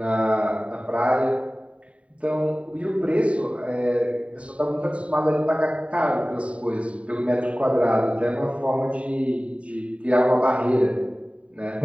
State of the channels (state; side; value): late; left; 0.064 ms